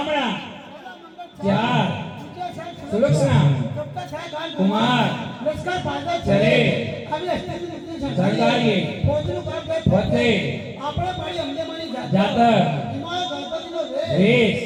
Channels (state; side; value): identical; both; correlation 1.00